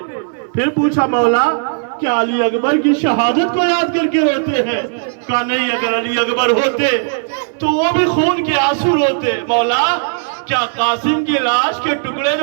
پھر پوچھا مولا کیا علی اکبر کی شہادت کو یاد کر کے روتے ہیں؟ کہا نہیں، اگر علی اکبر ہوتے تو وہ بھی خون کے آنسو روتے. مولا کیا قاسم کی لاش کے ٹکڑے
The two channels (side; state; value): left; silent; digital silence